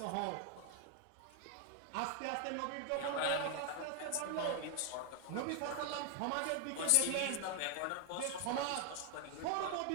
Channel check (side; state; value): both; different; correlation 0.00